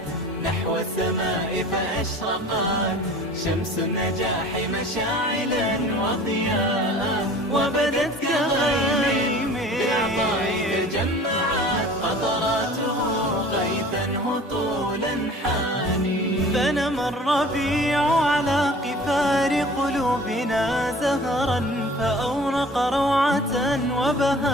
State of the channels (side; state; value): both; normal; correlation 0.45